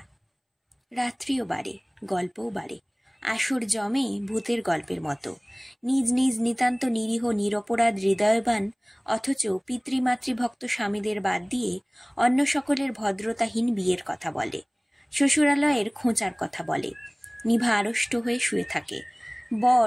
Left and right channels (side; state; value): both; identical; correlation 1.00